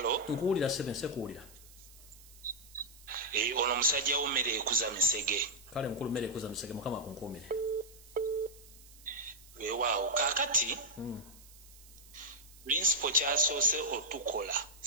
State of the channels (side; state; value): right; noise; hiss, 22 dB below the sound